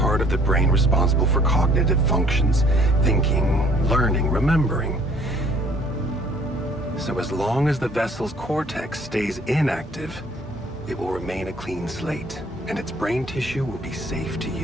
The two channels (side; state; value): both; normal; correlation 0.57